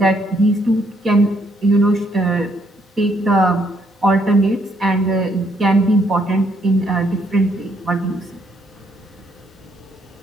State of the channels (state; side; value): normal; both; correlation 0.71